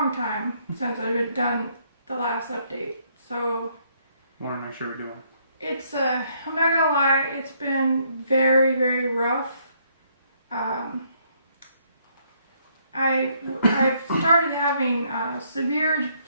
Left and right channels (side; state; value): both; inverted; correlation -0.69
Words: time since I've done the last update, so Want to make sure we're doing. it's I'm not gonna lie, it's been very, very rough. I've started having severe